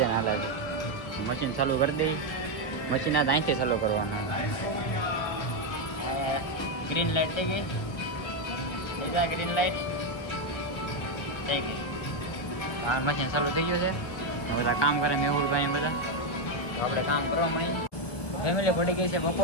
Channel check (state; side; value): late; right; 1.1 ms